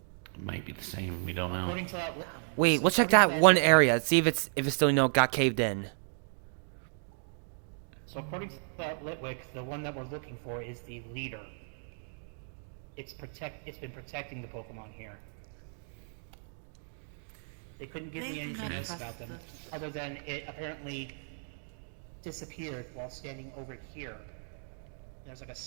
Might be the same. We don't know. According to that, Wait, let's check that one area. See if it's still got caved in. so according to that Litwick, the one that we're looking for is the leader. It's been protecting the Pokemon here. They couldn't give They me do anything not else trust about them, the- other than it apparently disappeared while standing over here. There's like a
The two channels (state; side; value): silent; left; digital silence